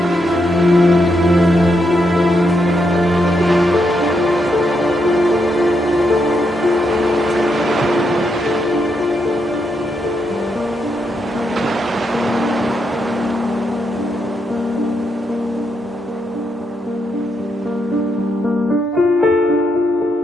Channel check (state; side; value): normal; both; correlation 0.80